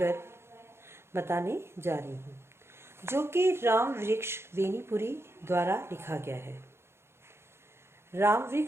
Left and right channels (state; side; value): late; left; 0.12 ms